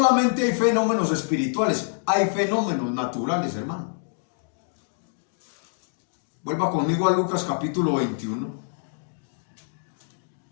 hay fenómenos espirituales, hay fenómenos naturales, hermano. Vuelva conmigo a Lucas capítulo 21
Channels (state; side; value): silent; right; digital silence